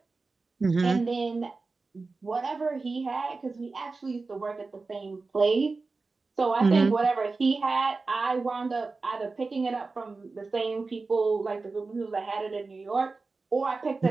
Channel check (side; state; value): left; quieter; 3.9 dB